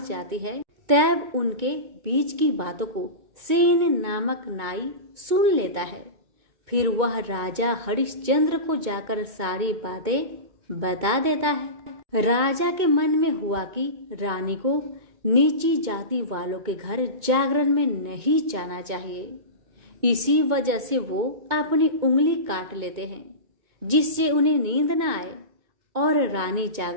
जाती है तब उनके बीच की बातों को सेन नामक नाई सुन लेता है। फिर वह राजा हरिश्चंद्र को जाकर सारी बातें बता देता है। राजा के मन में हुआ कि रानी को नीची जाति वालों के घर जागरण में नहीं जाना चाहिए। इसी वजह से वो अपनी उंगली काट लेते हैं जिससे उन्हें नींद न आए और रानी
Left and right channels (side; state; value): left; late; 2.2 ms